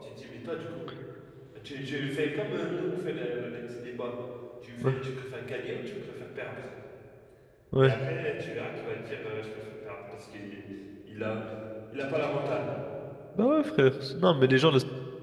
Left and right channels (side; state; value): both; identical; correlation 1.00